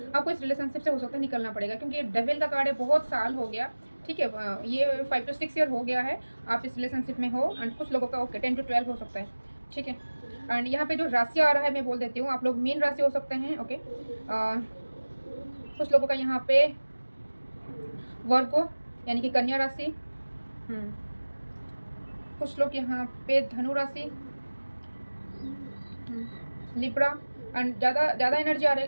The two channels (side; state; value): both; inverted; correlation -1.00